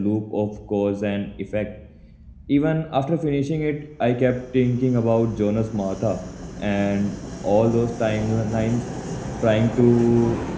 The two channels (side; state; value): both; identical; correlation 1.00